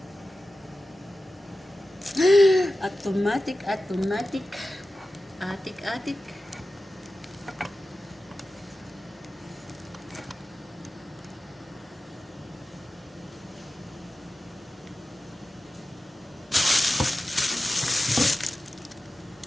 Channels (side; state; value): both; normal; correlation 0.94